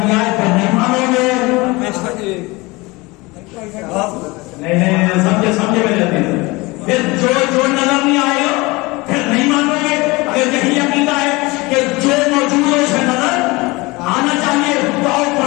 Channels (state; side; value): quieter; right; 23.5 dB